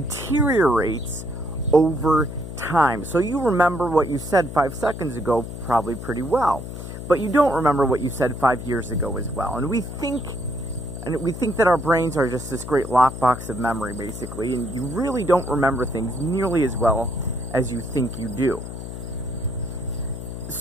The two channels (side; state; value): left; noise; hum, 9 dB below the sound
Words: over time. So you remember what you said 5 seconds ago probably pretty well, but you don't remember what you said 5 years ago as well. And we think that our brains are just this great lockbox of memory, basically, and you really don't remember things nearly as well as you think you do.